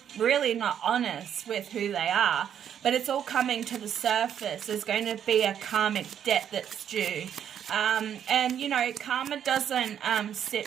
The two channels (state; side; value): quieter; left; 9.2 dB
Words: really not honest with who they are. But it's all coming to the surface. There's going to be a karmic debt that's due. And, you know, karma doesn't